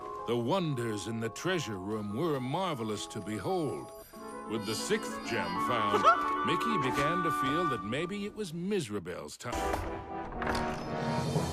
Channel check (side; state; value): both; identical; correlation 1.00